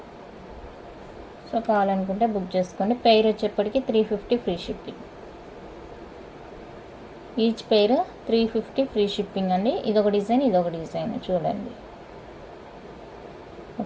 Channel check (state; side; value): identical; both; correlation 1.00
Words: సో కావాలనుకుంటే బుక్ చేసుకోండి. పెయిర్ వచ్చేప్పటికి 350 free shipping. Each pair 350 free shipping అండి. ఇదొక డిజైన్, ఇదొక డిజైన్ చూడండి.